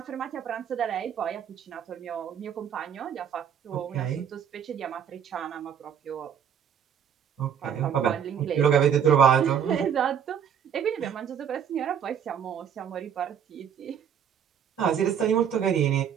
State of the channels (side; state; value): left; quieter; 8.4 dB